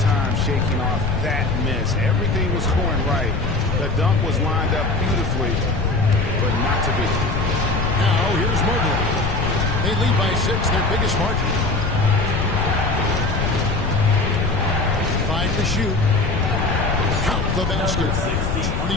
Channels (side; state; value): left; noise; rumble, 2 dB below the sound